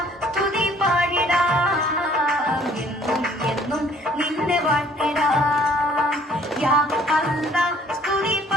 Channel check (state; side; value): normal; both; correlation 0.58